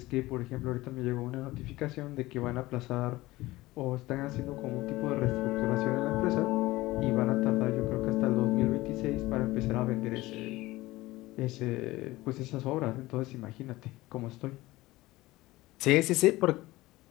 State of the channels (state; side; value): quieter; right; 18.8 dB